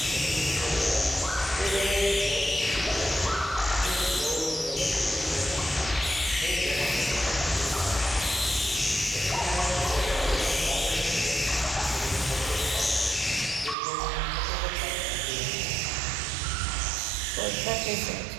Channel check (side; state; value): left; drops out; at 13.8 s